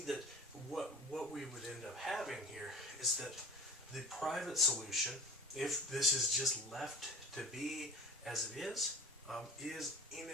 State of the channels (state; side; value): normal; both; correlation 0.40